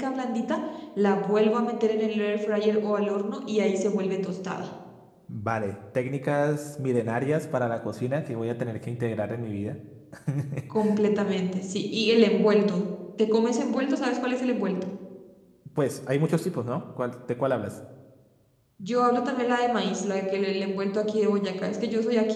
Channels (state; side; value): identical; both; correlation 1.00